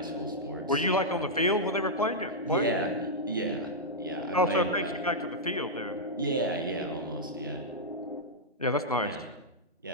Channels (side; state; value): both; normal; correlation -0.07